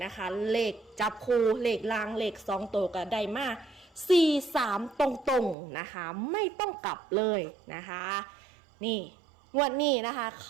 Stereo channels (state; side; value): drops out; left; at 5.6 s